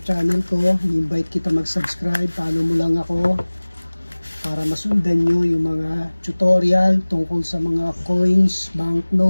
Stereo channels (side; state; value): both; inverted; correlation -1.00